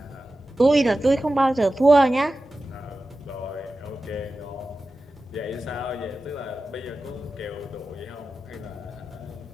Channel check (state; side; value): normal; both; correlation 0.94